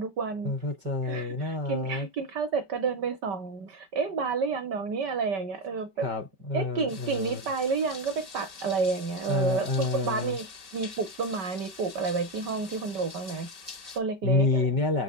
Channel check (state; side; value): late; left; 5.2 ms